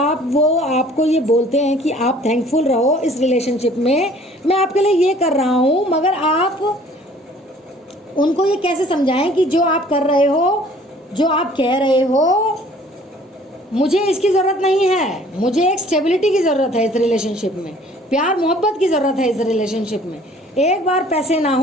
ये बोलते हैं कि आप थैंकफुल रहो इस रिलेशनशिप में, मैं आपके लिए ये कर रहा हूँ, मगर आप उनको ये कैसे समझाएं कि जो आप कर रहे हो जो आप कह रहे हो मुझे इसकी ज़रूरत नहीं है, मुझे एक स्टेबिलिटी की ज़रूरत है इस रिलेशनशिप में, प्यार मोहब्बत की ज़रूरत है इस रिलेशनशिप में। एक बार पैसे ना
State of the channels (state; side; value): normal; both; correlation 0.54